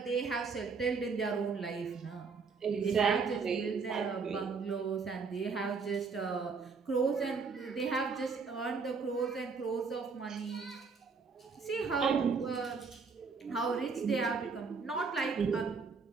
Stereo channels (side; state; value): left; quieter; 5.0 dB